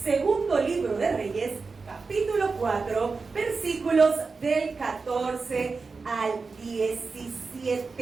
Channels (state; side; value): quieter; left; 4.4 dB